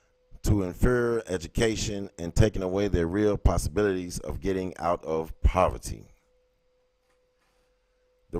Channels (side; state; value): both; identical; correlation 1.00